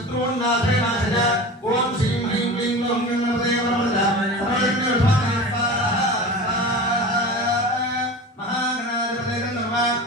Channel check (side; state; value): both; normal; correlation 0.32